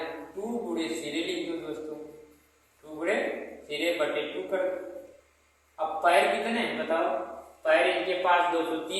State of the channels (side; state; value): both; identical; correlation 1.00